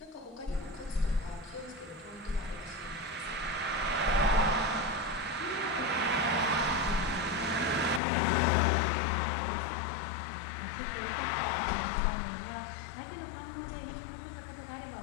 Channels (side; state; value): right; drops out; at 8.0 s